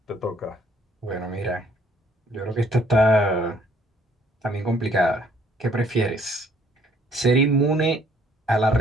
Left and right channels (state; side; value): normal; both; correlation 0.63